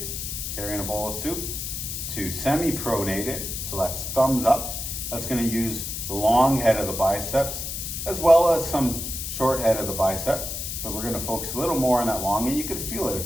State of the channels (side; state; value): left; noise; hiss, 5 dB below the sound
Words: carrying a bowl of soup, to semi-pronated, so that's thumbs up. That's going to use the long head of the biceps, as well as some short head of the biceps, but we're going to focus a little more on that long, and you can feel it